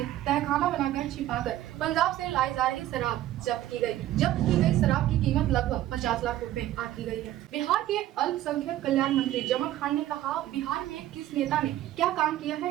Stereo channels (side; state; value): left; quieter; 13.7 dB